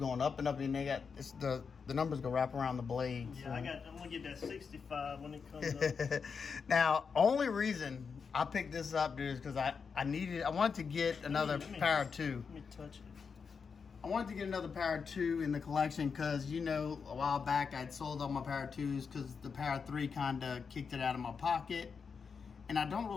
up and up, and they got the numbers go wrap around the blade. Yeah, so. I'm gonna get that 65 when it comes up. Now, only reason I picked this up, dude, is because I wanted to get another Para 2. Let me touch it. I wanted to get another Para 2 in the collection because, you know, a while back I'd sold all my Para 2s because the Para 3 kind of kicked it out of my pocket. And I don't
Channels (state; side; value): quieter; right; 5.7 dB